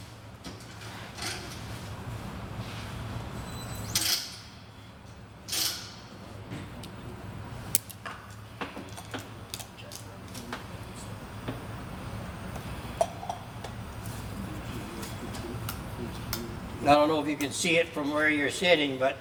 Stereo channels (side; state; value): both; identical; correlation 1.00